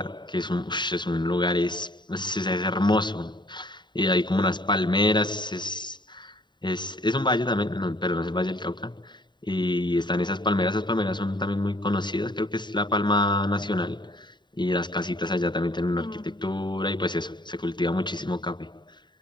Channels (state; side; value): late; right; 0.22 ms